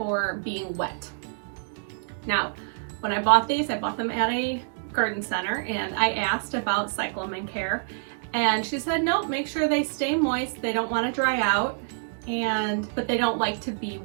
being wet. Now, when I bought these, I bought them at a garden center, and I asked about cyclamen care, and she said, nope, make sure they stay moist. They don't want to dry out, but they don't like to be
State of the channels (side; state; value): left; silent; digital silence